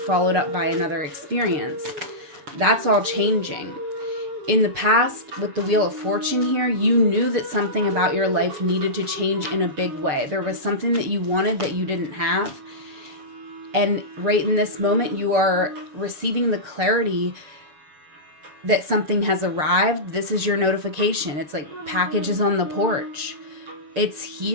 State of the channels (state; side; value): late; left; 6.7 ms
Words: up by another experience. That's all changing. In the past, with the Wheel of Fortune here, you knew that something about your life needed to change in a big way. There was something that you wanted that you didn't have. And right in this moment, you are receiving the clarity that something has arrived. This is your notification. It's like packages on the porch. It's